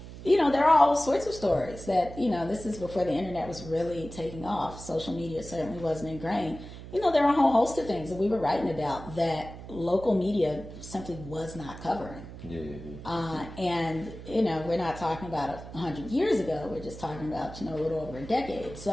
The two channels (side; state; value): right; noise; hum, 13 dB below the sound